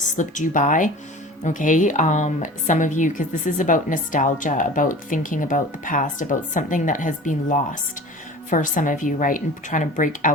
you by. Okay, some of you, because this is about nostalgia, about thinking about the past, about something that has been lost. for some of you, right? And trying to break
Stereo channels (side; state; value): both; normal; correlation 0.39